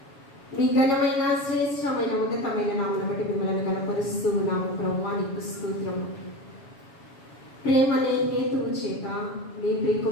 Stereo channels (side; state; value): right; late; 7.2 ms